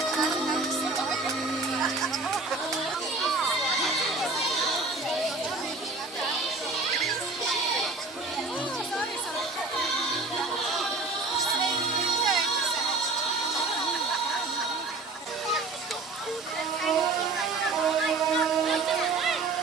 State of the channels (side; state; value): left; quieter; 3.6 dB